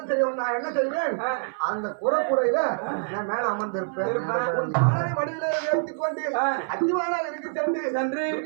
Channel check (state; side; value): silent; left; 57 dB below the other